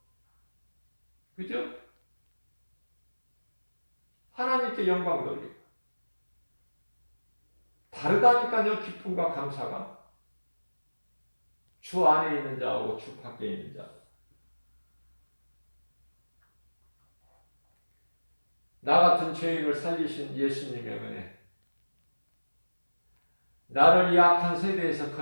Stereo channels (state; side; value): inverted; both; correlation -1.00